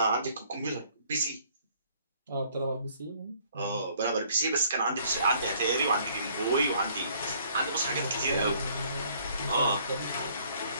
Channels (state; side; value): inverted; both; correlation -0.61